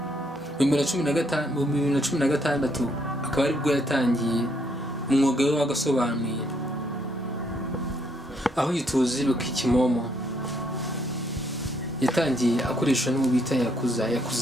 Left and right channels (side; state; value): both; normal; correlation 0.71